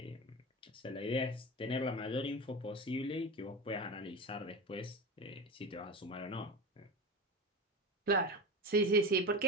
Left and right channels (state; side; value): normal; both; correlation 0.26